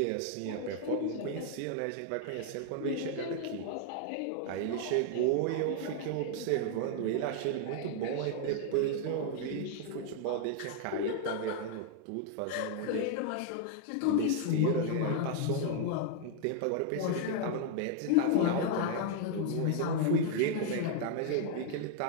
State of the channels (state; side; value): different; both; correlation 0.00